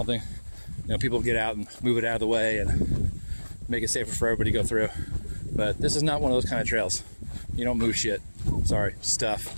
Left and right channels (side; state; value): both; inverted; correlation -1.00